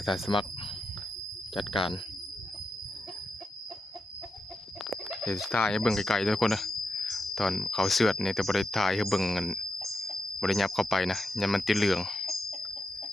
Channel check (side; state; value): both; normal; correlation 0.86